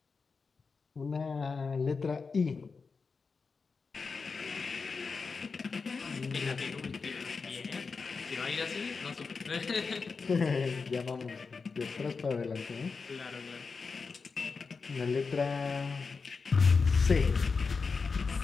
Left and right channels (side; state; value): right; quieter; 4.8 dB